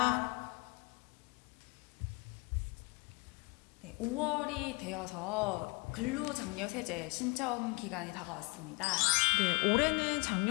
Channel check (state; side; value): quieter; right; 28.6 dB